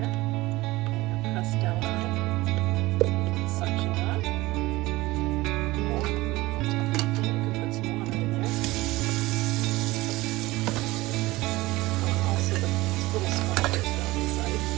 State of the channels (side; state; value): left; quieter; 19.7 dB